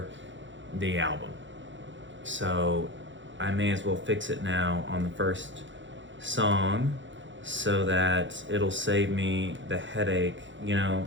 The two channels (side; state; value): left; late; 0.54 ms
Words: the album. So I may as well fix it now on the first song so that it'll save me the headache,